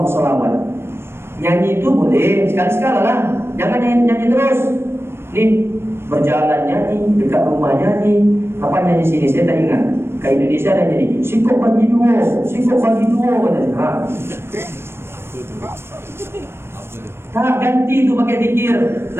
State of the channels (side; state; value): left; late; 0.12 ms